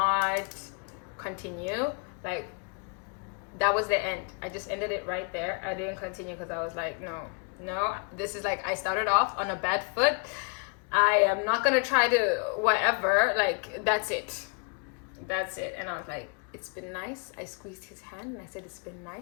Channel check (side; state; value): right; quieter; 37.1 dB